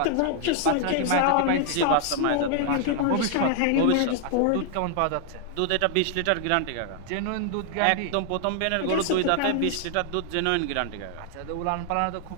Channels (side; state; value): both; different; correlation 0.00